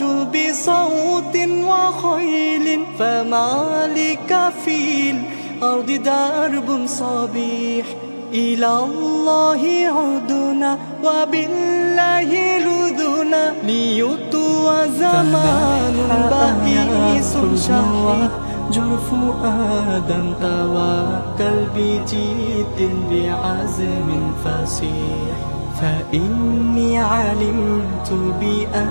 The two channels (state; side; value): inverted; both; correlation -1.00